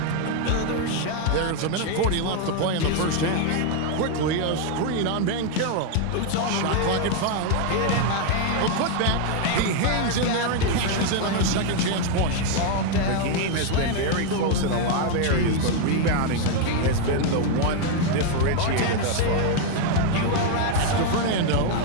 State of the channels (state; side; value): different; both; correlation 0.01